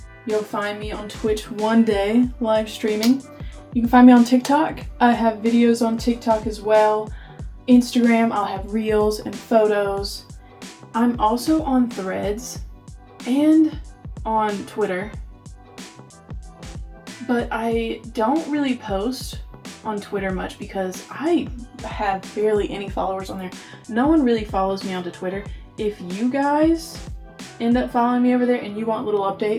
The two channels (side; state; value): both; identical; correlation 1.00